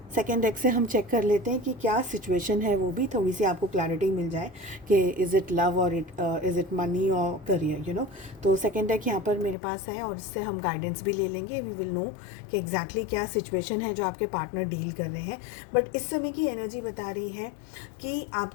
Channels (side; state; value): right; drops out; at 9.6 s